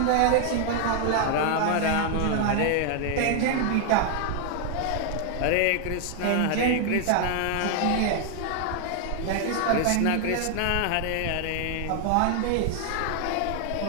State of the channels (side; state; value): both; different; correlation 0.00